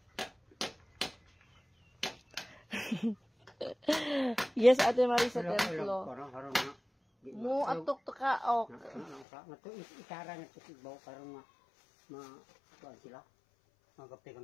Yes, Ate Marisa Templo. Mo atok to ka ok. Nato itara na tibaw karon ma kuan sila. Magapte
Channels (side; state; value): right; drops out; at 9.2 s